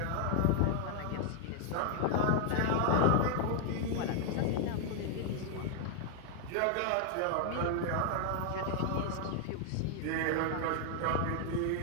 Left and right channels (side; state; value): both; different; correlation 0.00